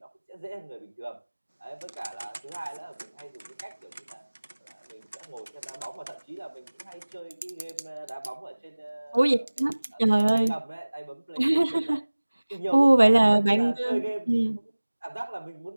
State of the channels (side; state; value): both; inverted; correlation -1.00